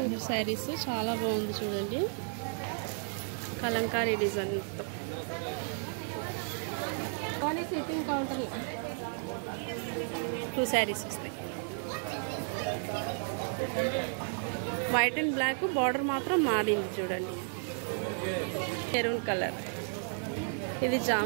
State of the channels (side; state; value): left; silent; 56 dB below the other